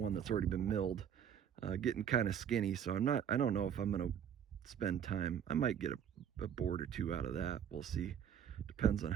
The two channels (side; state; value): left; quieter; 8.8 dB